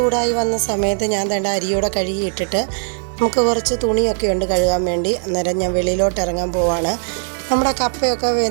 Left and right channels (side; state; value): left; silent; digital silence